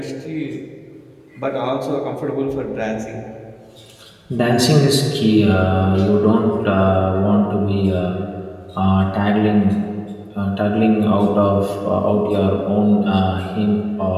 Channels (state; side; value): identical; both; correlation 1.00